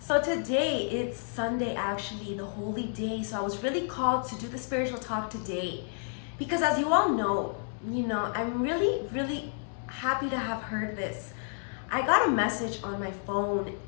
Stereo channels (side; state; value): right; silent; digital silence